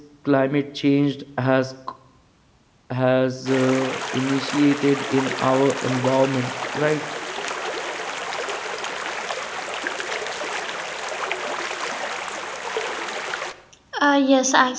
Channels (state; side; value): identical; both; correlation 1.00